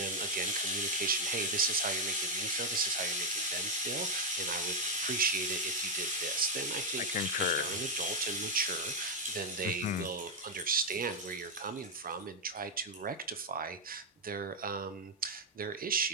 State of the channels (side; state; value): both; normal; correlation 0.01